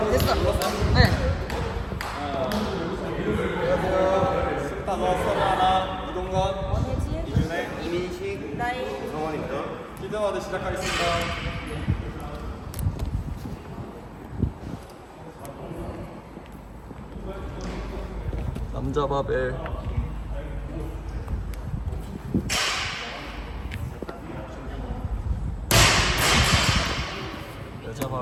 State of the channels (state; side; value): identical; both; correlation 1.00